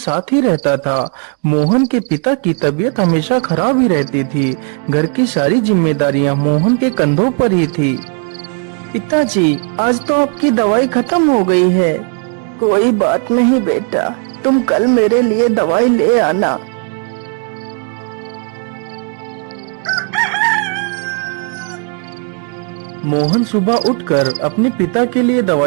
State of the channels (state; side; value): quieter; left; 38.0 dB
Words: ही रहता था। मोहन के पिता की तबीयत हमेशा खराब ही रहती थी। घर की सारी जिम्मेदारियां मोहन के कंधों पर ही थी। पिताजी, आज तो आपकी दवाई खत्म हो गई है। कोई बात नहीं बेटा, तुम कल मेरे लिए दवाई ले आना। मोहन सुबह उठकर अपने पिता के लिए